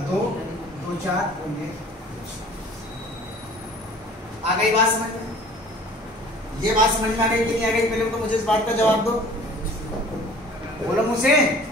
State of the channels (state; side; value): normal; both; correlation 0.48